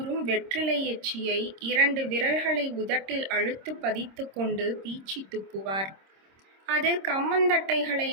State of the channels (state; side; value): late; left; 26 ms